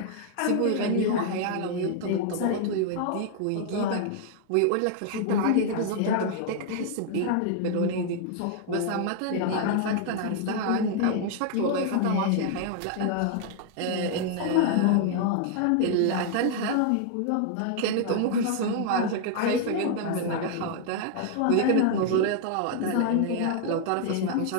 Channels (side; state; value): both; different; correlation 0.00